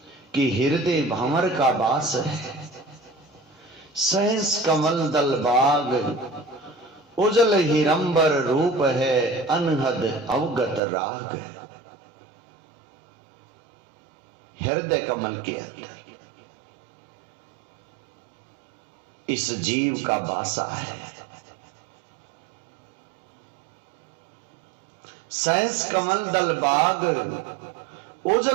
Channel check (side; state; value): left; drops out; at 10.8 s